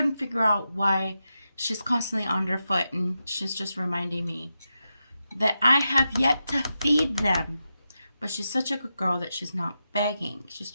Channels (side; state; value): both; inverted; correlation -0.89